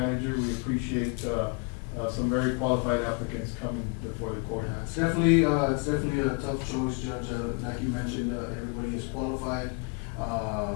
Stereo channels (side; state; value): right; quieter; 33.4 dB